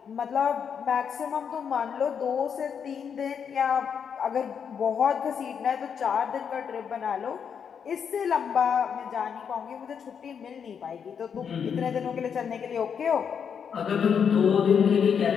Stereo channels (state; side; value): quieter; right; 7.2 dB